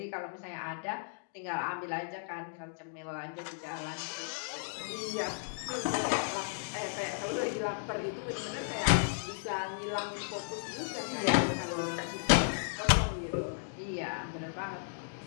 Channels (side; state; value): right; silent; digital silence